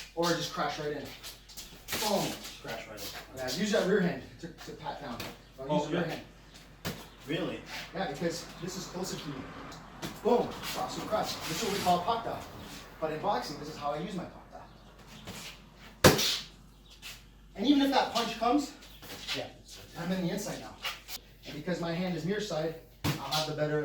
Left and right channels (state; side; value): identical; both; correlation 1.00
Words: or just crash right in. Boom. Crash right in. Yeah, use that rear hand to pat down. Don't use the rear hand. Really? Yeah, because this is closer to you. Boom, cross to cross. This is what we call pakta. But in boxing, this is how I use my pakta. And even if that punch comes, yeah, I'm in the inside now. And because my hand is near side, I'll have the better